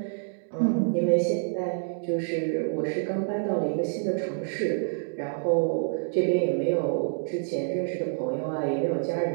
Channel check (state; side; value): silent; left; digital silence